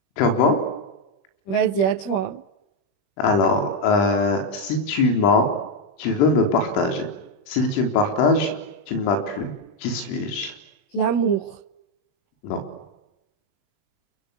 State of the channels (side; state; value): right; late; 21 ms